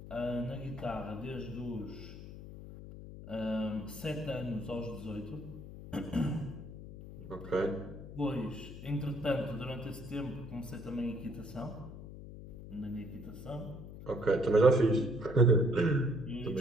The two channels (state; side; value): noise; left; hum, 12 dB below the sound